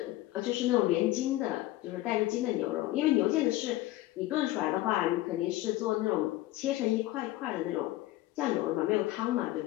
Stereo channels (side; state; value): right; quieter; 16.6 dB